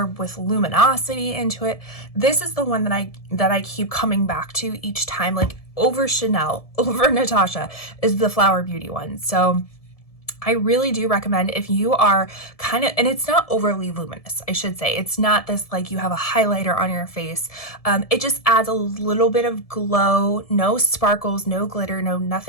with luminosity into it. This is the one that I keep coming back to each time, like over Chanel, over Natasha, is the Flower Beauty one. So I really do recommend, if you are kind of, and it's not overly luminous, I should say. It's not this like you have a highlighter on your face. It just adds a little bit of glow, no sparkles, no glitter, no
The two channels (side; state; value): right; late; 1.7 ms